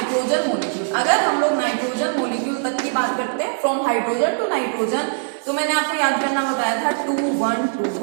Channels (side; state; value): left; silent; digital silence